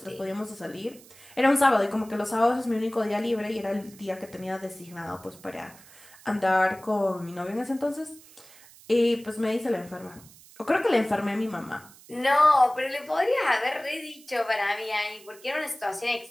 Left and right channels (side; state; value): right; noise; hiss, 23 dB below the sound